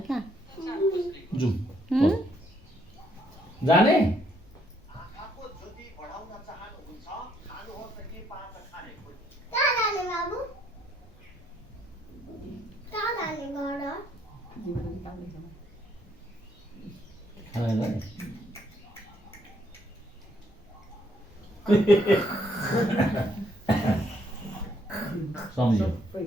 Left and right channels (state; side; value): normal; both; correlation 0.70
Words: कहाँ जाउँ जाने सम्झ्यो